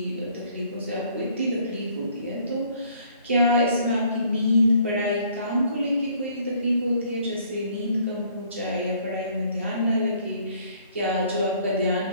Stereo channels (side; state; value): both; inverted; correlation -0.60